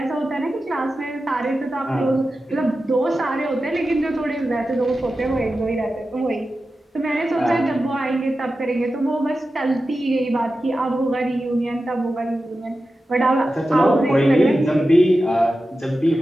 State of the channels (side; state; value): both; normal; correlation 0.92